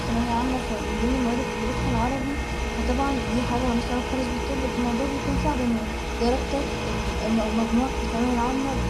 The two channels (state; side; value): identical; both; correlation 1.00